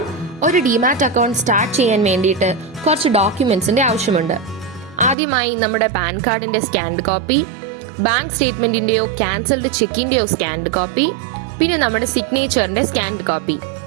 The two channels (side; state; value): left; drops out; at 5.2 s